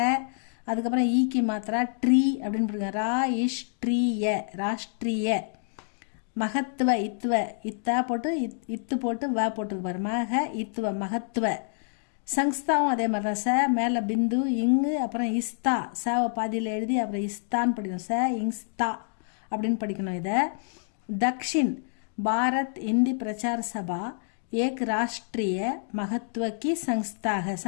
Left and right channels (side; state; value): right; silent; digital silence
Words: அதுக்கப்புறம் ஈக்கி மாத்திரா ட்ரீ அப்படின்னு போடுங்க. ரா இஷ் ட்ரீய, ராஷ்ட்ரிய. மகத்துவ, இத்துவ, இத்தா போட்டு இத்து போட்டு வ போட்டுருக்கு பாரு, மக இத்துவ, மகத்துவ. சங்ஸ்தாவும் அதே மாதிரி தான். ச மேலே பிந்து, இங்கு, அப்புறம் இஸ்தா, சவை பாதியில் எழுதி அப்புறம் இஸ்தான்னு படிக்கணும். ச இங்ஸ்தா அப்படின்னு படிக்கணும். இதை தக்ஷின் பாரத் ஹிந்தி பிரச்சார சபா ஏக் ராஷ்ட்ரிய மகத்துவ கி சங்ஸ்தாக.